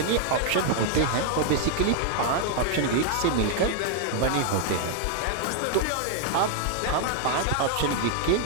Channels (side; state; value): both; different; correlation 0.00